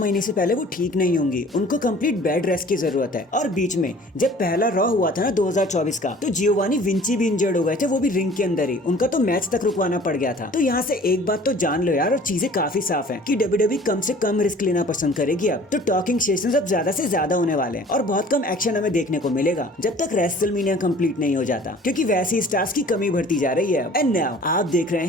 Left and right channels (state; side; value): normal; both; correlation 0.49